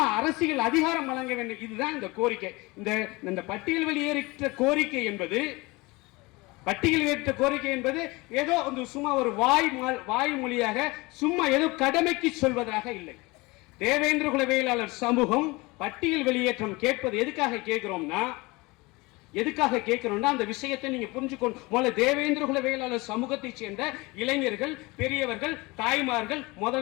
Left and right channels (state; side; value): quieter; right; 23.7 dB